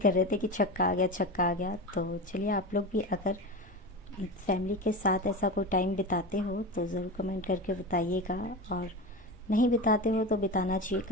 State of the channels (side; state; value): both; normal; correlation 0.25